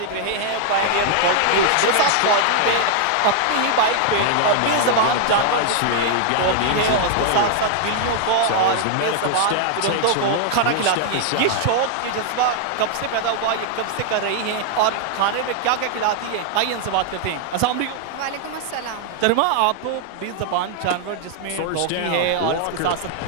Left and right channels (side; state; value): both; different; correlation 0.00